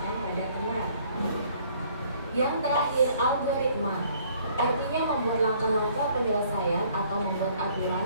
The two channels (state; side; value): inverted; both; correlation -0.60